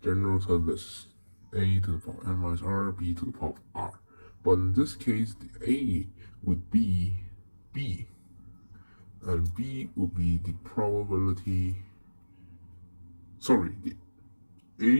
general term is a to the power n minus r, b to the power of r. But in this case, the a would be b. And b will be the probability, the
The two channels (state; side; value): inverted; both; correlation -1.00